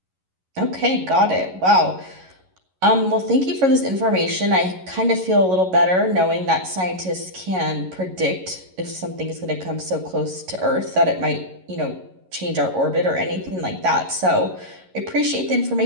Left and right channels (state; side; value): late; left; 11 ms